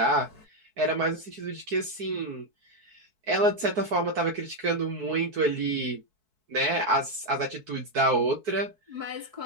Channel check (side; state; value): left; late; 4.6 ms